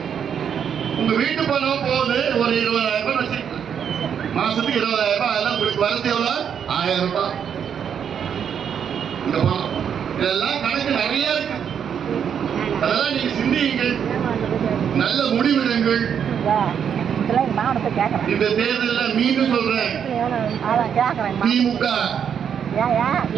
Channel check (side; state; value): left; quieter; 8.0 dB